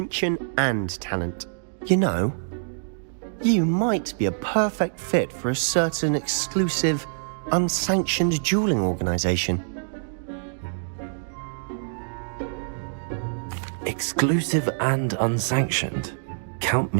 and talent. You know, you might be a perfect fit for a certain exclusive, unsanctioned dueling organization. Exclusive and unsanctioned. Count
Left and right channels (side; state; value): left; silent; digital silence